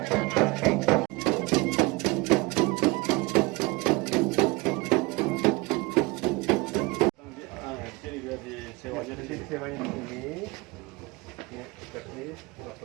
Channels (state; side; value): quieter; left; 24.0 dB